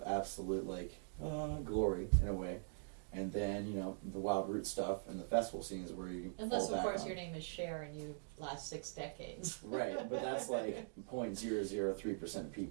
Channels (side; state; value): left; silent; digital silence